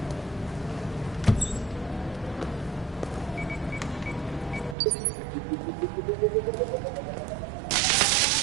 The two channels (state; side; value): drops out; left; at 4.8 s